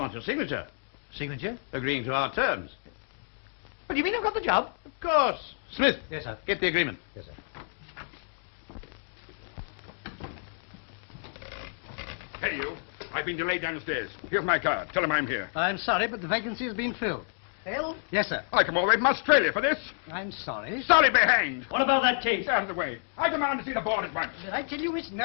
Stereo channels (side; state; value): right; silent; digital silence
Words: your signature. Signature? Agreeing to our terms. What do you mean I've got the job? Of course. Smith. Yes, sir. Get the agreement. Yes, sir. Hey, you. I've been delayed downstairs. Here's my card. Tell him I'm here. I'm sorry, but the vacancy has been filled. Phil? Yes, sir. I come all the way from Australia for this. I'm sorry. Sorry be hanged. What about that case? Out of the way. I demand to see the board at once. Did I tell you it's